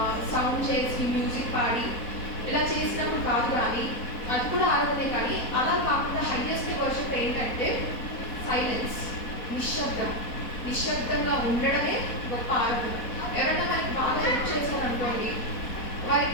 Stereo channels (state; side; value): late; right; 4.1 ms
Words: సౌండ్ చేసి మ్యూజిక్ పాడి ఇలా చేసినప్పుడు కాదు, కానీ అది కూడా ఆరాధనే. కానీ అలా కాకుండా హైయెస్ట్ వర్షిప్ ఏంటంటే సైలెన్స్, నిశ్శబ్దంగా ఉండడమే గొప్ప ఆరాధన. ఎవరైనా మనకి బాగా హెల్ప్ చేశారనుకోండి,